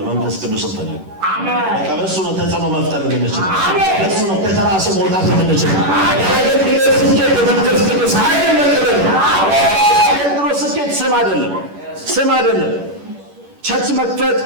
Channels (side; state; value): left; late; 11 ms